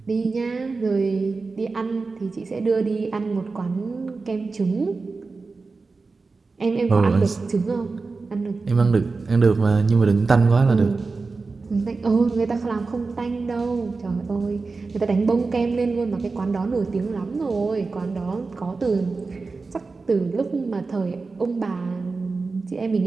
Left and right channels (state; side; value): quieter; left; 4.1 dB